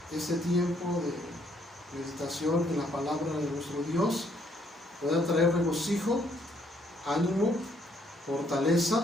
este tiempo de meditación en la palabra de nuestro Dios pueda traer regocijo, ánimo,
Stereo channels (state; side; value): normal; both; correlation 0.69